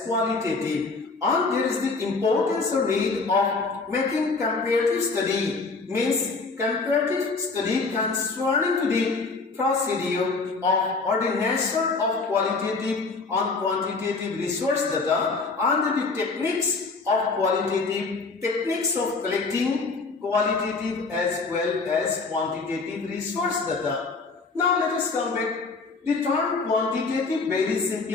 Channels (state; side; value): quieter; right; 4.1 dB